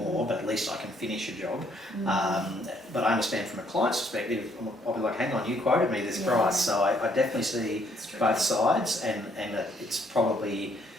but at least I can finish your job. But I understand from a client's perspective, I'll be like, hang on, you quoted me this price. So I definitely see both sides, and it's probably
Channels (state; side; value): normal; both; correlation 0.68